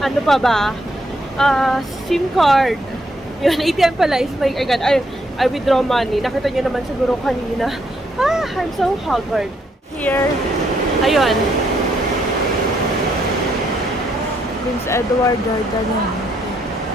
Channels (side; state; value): both; normal; correlation 0.74